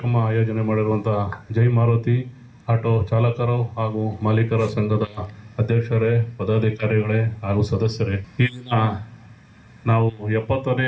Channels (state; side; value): identical; both; correlation 1.00